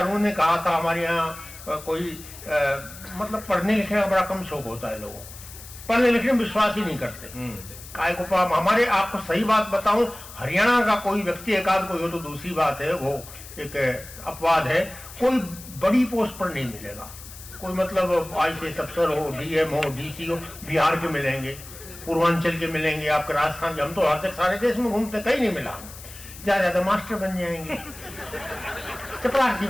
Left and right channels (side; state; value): left; noise; hiss, 16 dB below the sound